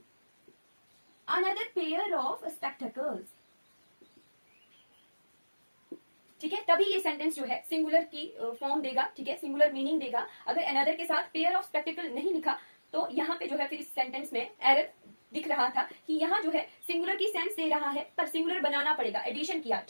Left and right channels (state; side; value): inverted; both; correlation -1.00